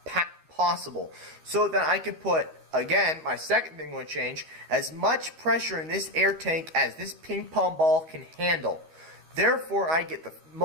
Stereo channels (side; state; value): left; late; 12 ms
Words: possible, so that I can put, again, my second thing I'm going to change, as much pressure in this air tank as this ping pong ball can handle. Therefore, I get the